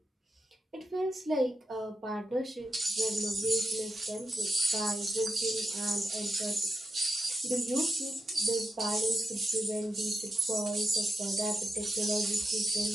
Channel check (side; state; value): both; normal; correlation 0.87